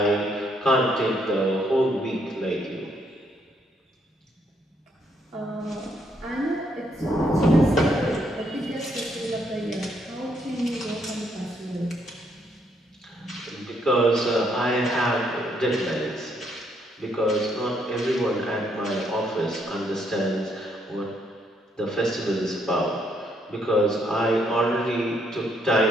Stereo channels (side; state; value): both; normal; correlation 0.72